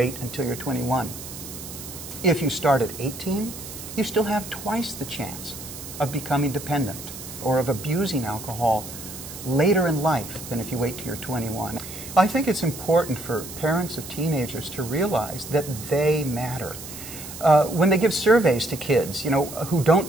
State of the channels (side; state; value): right; noise; hiss, 12 dB below the sound